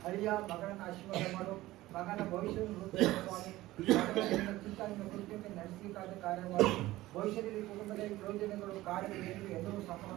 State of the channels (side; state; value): left; quieter; 17.2 dB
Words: ಅಳಿಯ ಮಗನನ್ನು ಆಶೀರ್ವಾದ ಮಾಡು. ಮಗನ ಭವಿಷ್ಯವನ್ನು ಸ್ವಾಮಿ. ಚಿಂತನೆಯನ್ನು ಕುರಿತಂತೆ ನಡೆಸಲಿಕ್ಕಾದ ಕಾರ್ಯ ಮಾಡು. ಭವಿಷ್ಯದಲ್ಲಿ ಕುಟುಂಬದಲ್ಲಿ ಯೋಜನೆಗಳು ಕಾರ್ಯಗಳು ಎಲ್ಲರೂ ಸಫಲ